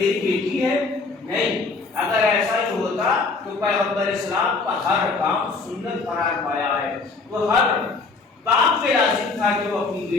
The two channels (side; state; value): right; quieter; 4.0 dB